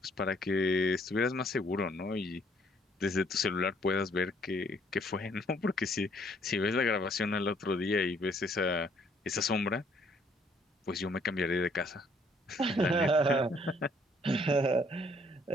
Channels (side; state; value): both; normal; correlation 0.64